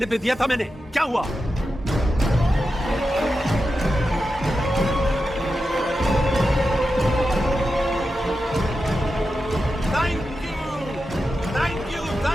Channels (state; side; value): normal; both; correlation 0.90